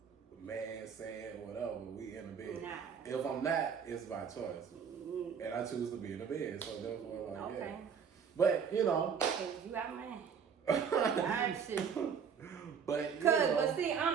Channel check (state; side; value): quieter; left; 6.9 dB